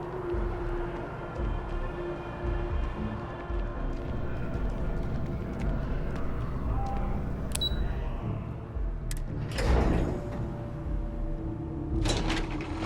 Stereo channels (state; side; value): identical; both; correlation 1.00